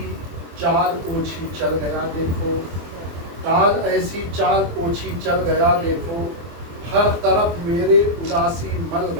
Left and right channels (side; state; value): left; late; 24 ms